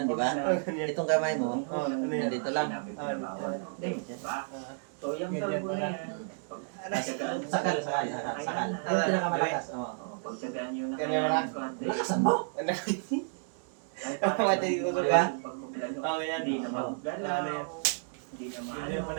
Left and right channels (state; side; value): silent; left; digital silence